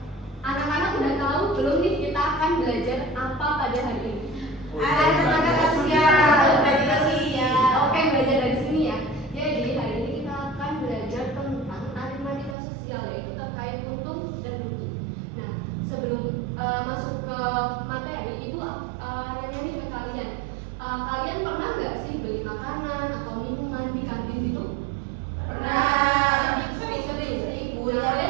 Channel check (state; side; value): drops out; left; at 12.6 s